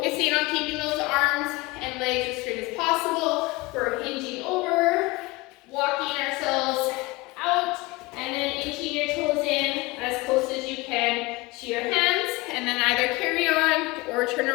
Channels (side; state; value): right; quieter; 22.3 dB